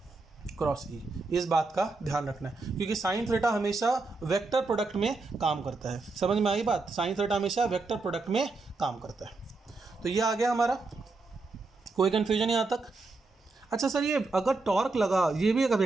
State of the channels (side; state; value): left; quieter; 3.7 dB